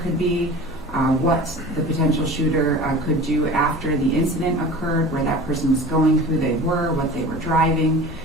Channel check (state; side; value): normal; both; correlation 0.38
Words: could be, what the potential shooter could do after the incident occurred, where that person was going, who they were, what they were driving.